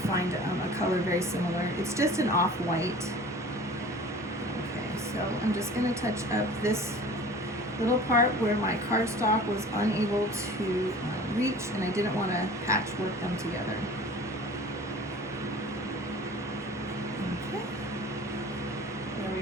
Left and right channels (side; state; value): both; normal; correlation 0.43